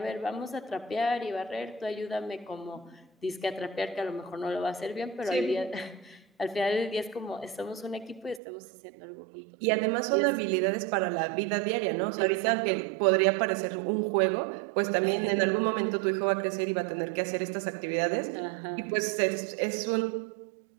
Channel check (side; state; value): left; drops out; at 8.4 s